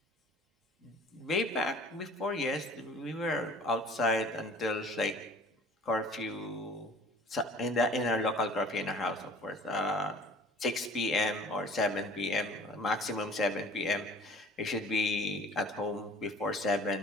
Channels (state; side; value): normal; both; correlation 0.49